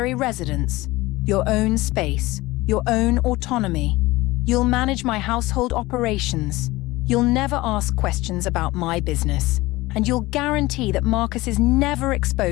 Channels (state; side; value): quieter; right; 19.8 dB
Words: residence, your own space, your own autonomy. You'll manage my household operations. You'll never ask questions about my business. And you'll guarantee that Marcus is never